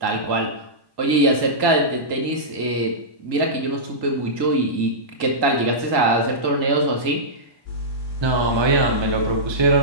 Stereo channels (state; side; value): late; left; 1.1 ms